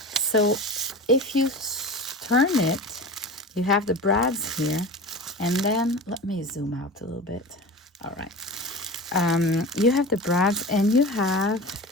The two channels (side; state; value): both; normal; correlation 0.32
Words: So if you turn it, you have the brads here, and then let me zoom out a little bit. All right. You have the brads, and you have